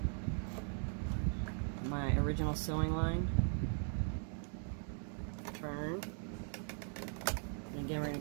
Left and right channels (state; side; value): silent; left; 51 dB below the other